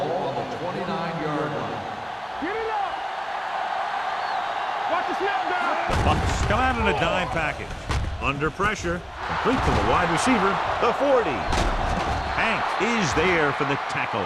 on the 29-yard line. Get it up. Watch the snap down. The Bucs come out in a dime package. Under pressure, complete to the wide receiver, the 40. Hank is there for the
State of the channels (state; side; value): identical; both; correlation 1.00